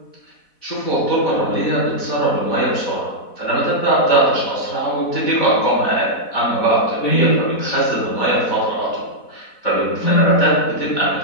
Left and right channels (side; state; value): right; late; 4.1 ms